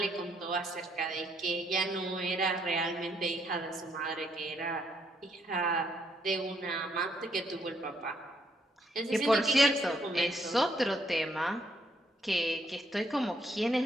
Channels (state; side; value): normal; both; correlation 0.72